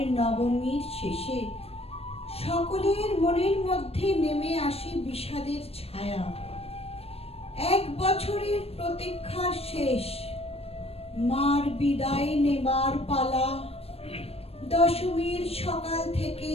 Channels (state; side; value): late; right; 0.29 ms